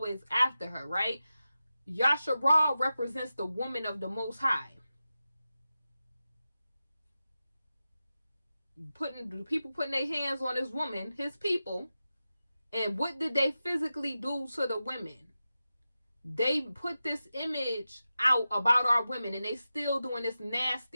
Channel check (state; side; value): inverted; both; correlation -0.92